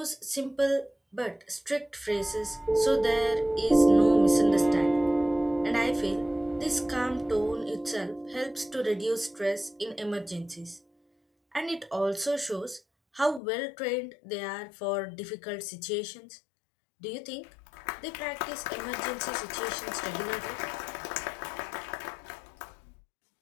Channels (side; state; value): right; drops out; at 13.4 s